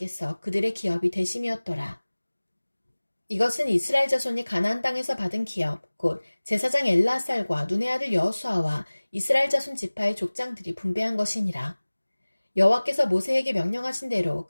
그들의 기업이 되심이었더라. 이것은 이스라엘 자손이 가나안 땅에서 받은 기업 곧 제사장 엘라살과 눈의 아들 여호수아와 이스라엘 자손 지파의 족장들이 분배한 것이니라. 여호와께서 모세에게 명령하신 대로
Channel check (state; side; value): inverted; both; correlation -1.00